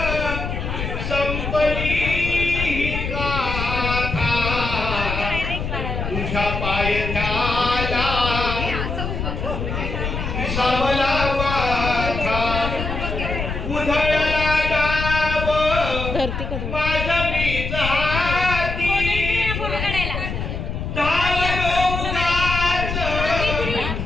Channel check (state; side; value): noise; left; rumble, 4 dB below the sound